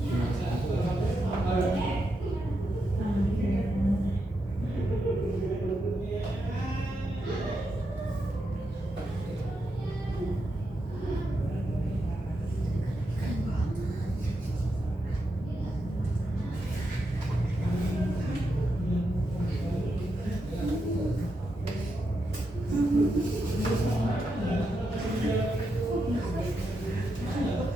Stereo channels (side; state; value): both; normal; correlation 0.84